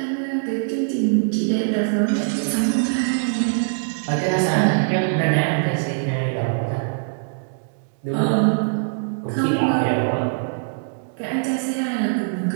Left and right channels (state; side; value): silent; left; digital silence